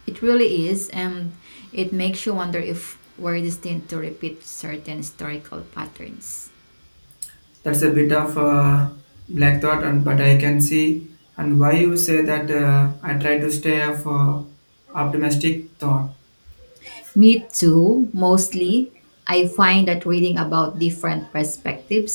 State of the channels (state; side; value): inverted; both; correlation -1.00